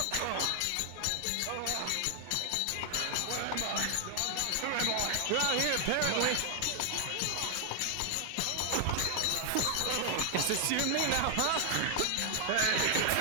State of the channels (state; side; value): different; both; correlation 0.00